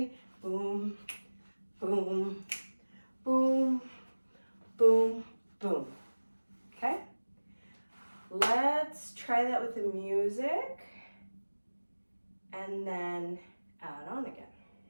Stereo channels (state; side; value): inverted; both; correlation -1.00